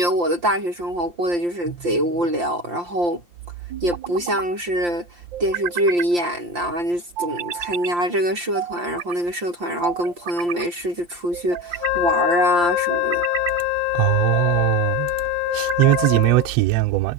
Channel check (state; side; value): late; left; 5.7 ms